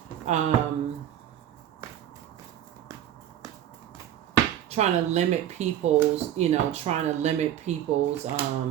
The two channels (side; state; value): left; quieter; 11.2 dB